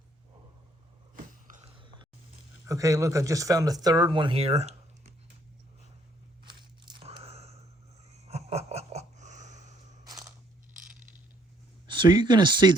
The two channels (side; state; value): both; normal; correlation 0.66